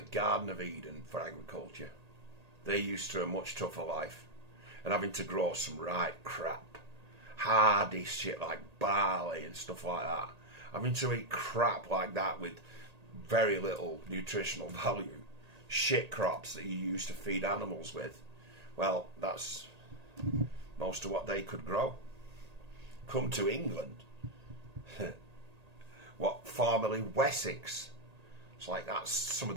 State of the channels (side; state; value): left; late; 1.8 ms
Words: of Eden for agriculture. They're used to a much tougher life and having to grow some right crap, hardy shit like barley and stuff like that. Having to eat crap like that with very little nutritional value. Shit crops that you used to feed animals with. Well, that's most of what they could grow. Come to England. What, formerly Wessex. It's like that's some of